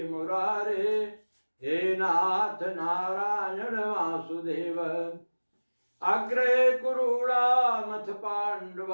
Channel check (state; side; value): inverted; both; correlation -1.00